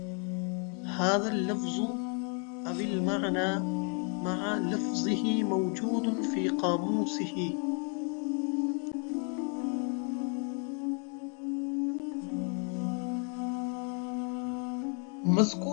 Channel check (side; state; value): right; quieter; 39.3 dB